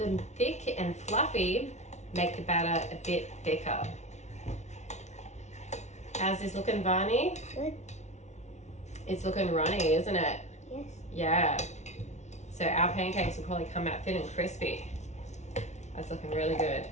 thick and fluffy, make the batter a bit thicker. How's this looking, Varney? Good. It's looking runny, isn't it? Yes. Yeah. So our pancakes will probably come out thin and crispy. That's looking really good.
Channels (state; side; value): late; right; 0.33 ms